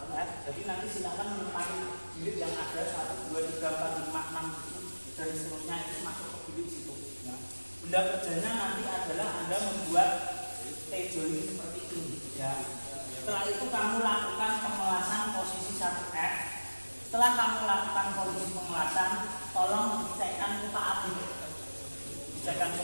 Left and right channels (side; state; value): both; inverted; correlation -1.00